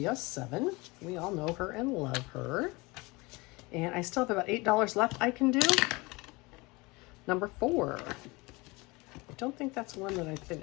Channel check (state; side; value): quieter; right; 24.5 dB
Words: We all know her and love her. And I still have about $8 left I can do. Number 4. I don't think that's one that I